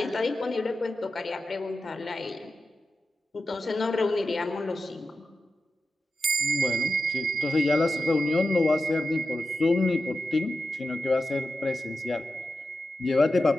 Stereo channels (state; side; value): normal; both; correlation 0.91